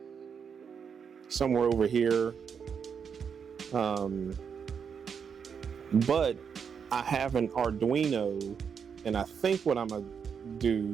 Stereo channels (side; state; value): left; quieter; 6.8 dB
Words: somewhere over here. But I have an Arduino, and I think what I'm gonna